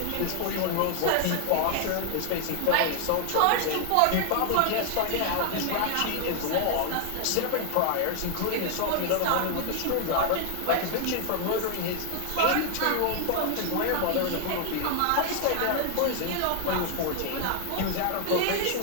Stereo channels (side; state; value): both; different; correlation 0.00